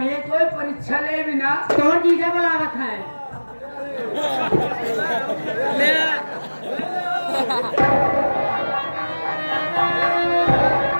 कोई परीक्षा ले भी ना। तो जीजा बुलावत है।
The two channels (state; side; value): inverted; both; correlation -1.00